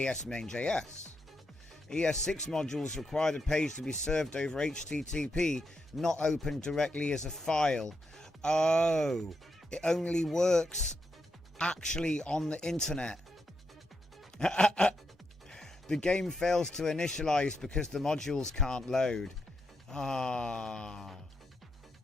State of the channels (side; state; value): both; normal; correlation 0.83